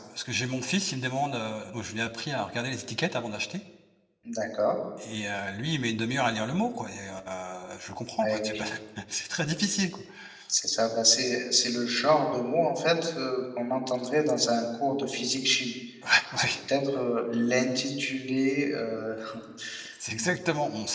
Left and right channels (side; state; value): both; identical; correlation 1.00